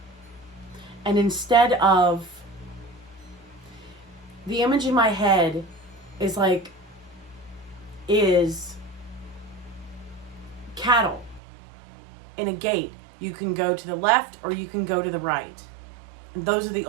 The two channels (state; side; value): drops out; left; at 11.4 s